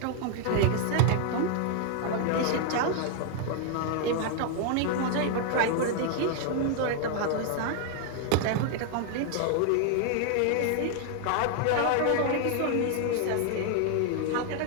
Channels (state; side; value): different; both; correlation 0.00